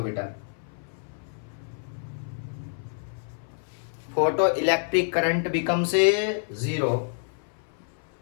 बेटा। Photo electric current becomes 0।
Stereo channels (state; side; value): silent; right; 56 dB below the other